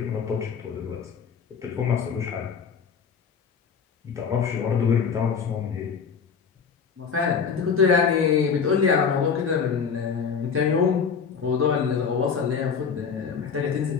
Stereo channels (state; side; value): quieter; right; 6.3 dB